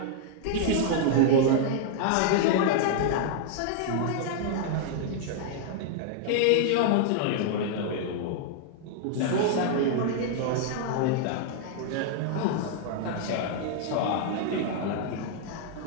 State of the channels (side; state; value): both; different; correlation -0.01